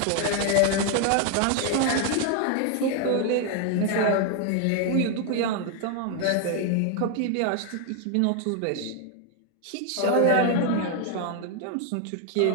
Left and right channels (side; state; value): both; different; correlation 0.00